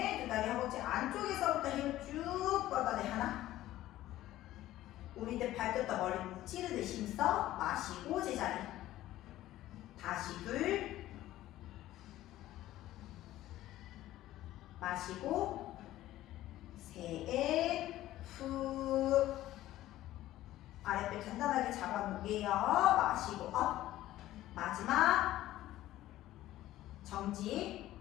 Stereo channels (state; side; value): quieter; right; 14.7 dB